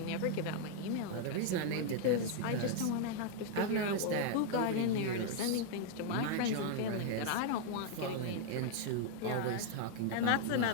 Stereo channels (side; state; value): both; different; correlation 0.00